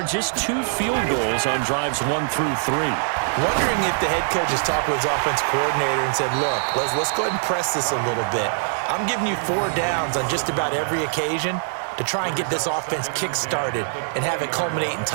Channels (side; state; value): left; silent; digital silence